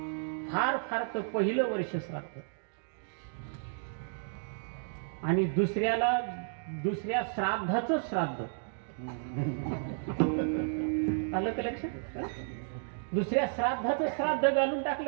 फार फार तर पहिलं वर्ष श्राद्ध आणि दुसऱ्या श्राद्धाचं श्राद्ध. आलं का लक्षात? दुसऱ्या श्राद्धाचं श्राद्ध घालून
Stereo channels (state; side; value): silent; left; digital silence